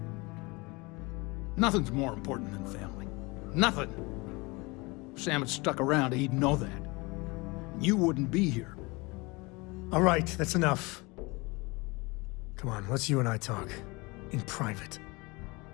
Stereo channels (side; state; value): right; quieter; 25.5 dB